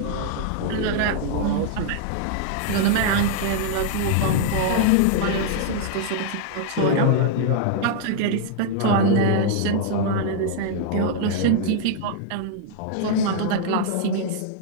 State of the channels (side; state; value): both; different; correlation -0.01